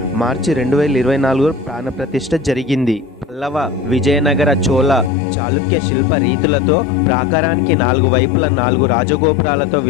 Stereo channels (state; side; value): drops out; right; at 5.1 s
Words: మార్చి 2024 ప్రాణప్రతిష్ఠ జరిగింది. పల్లవ, విజయనగర, చోళ, చాళుక్య శిల్ప రీతులతో ప్రాకారానికి 4 వైపుల 4 రాజగోపురాలతో